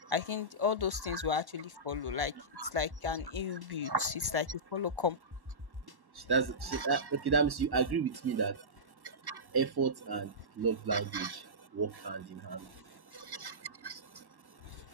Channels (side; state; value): left; late; 1.1 ms